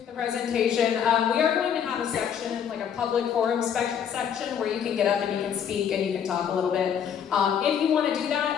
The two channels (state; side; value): quieter; right; 8.3 dB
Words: the presentation. We are going to have a section, a public forum section, where you can get up and you can speak and you can talk a little bit. If you want to do